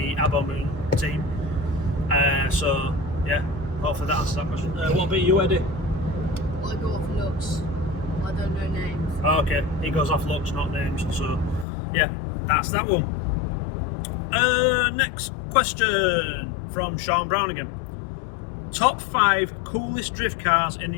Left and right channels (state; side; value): drops out; right; at 11.7 s